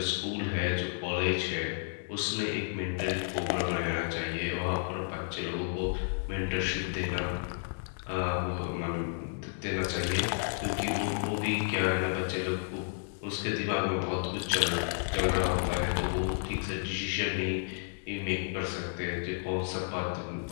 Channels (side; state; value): right; silent; 57 dB below the other